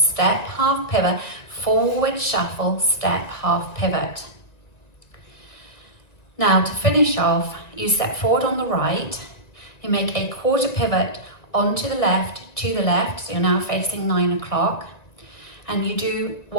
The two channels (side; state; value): right; late; 1.9 ms